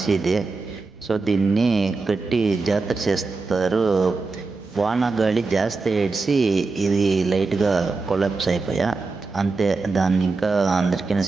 సో దీన్ని కట్టి జాతర చేస్తారు. వాన గాలి జాస్తి ఏడ్చి ఇది లైట్గా కొలాప్స్ అయిపోయా అంతే. దాన్ని ఇంకా అందరికీ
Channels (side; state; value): left; quieter; 4.0 dB